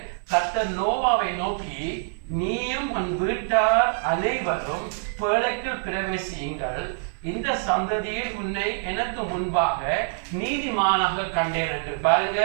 கர்த்தர் நோவாவை நோக்கி, நீயும் உன் வீட்டார் அனைவரும் பேழைக்குள் பிரவேசியுங்கள், இந்த சந்ததியில் உன்னை எனக்கு முன்பாக நீதிமானாக கண்டேன் என்று. பாருங்க,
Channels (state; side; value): silent; left; 58 dB below the other